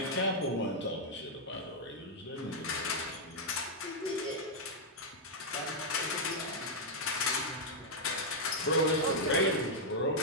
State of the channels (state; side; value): normal; both; correlation -0.04